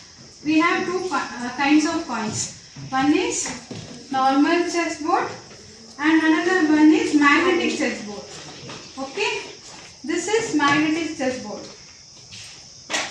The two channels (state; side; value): identical; both; correlation 1.00